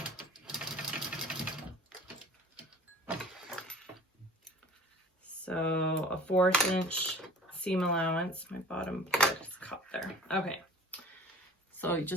So a 1/4 inch seam allowance. My bottom part is caught there. Okay. So you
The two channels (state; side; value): normal; both; correlation 0.44